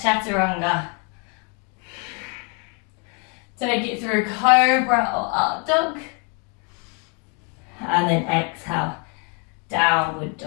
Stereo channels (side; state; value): right; quieter; 35.9 dB